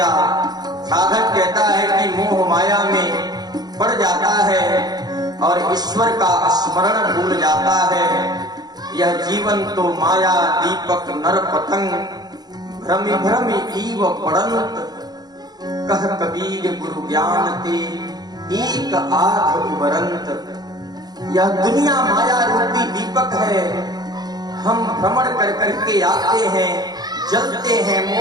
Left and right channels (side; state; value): left; late; 0.19 ms